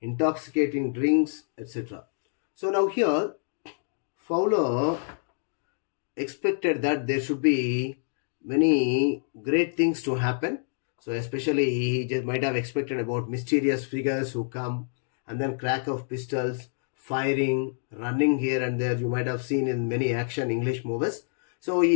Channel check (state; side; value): silent; right; digital silence